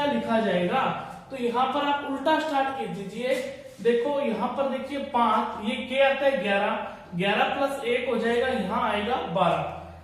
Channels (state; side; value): identical; both; correlation 1.00